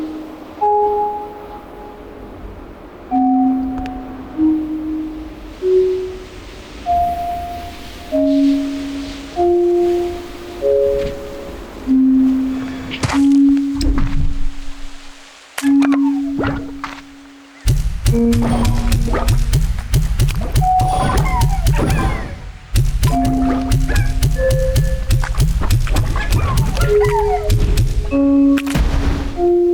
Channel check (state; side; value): identical; both; correlation 1.00